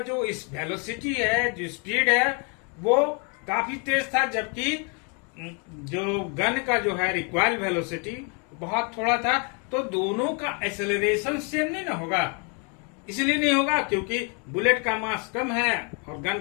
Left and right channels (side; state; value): right; quieter; 35.7 dB